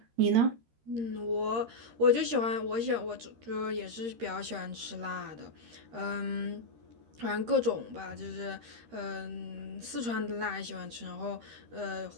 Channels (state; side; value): late; left; 13 ms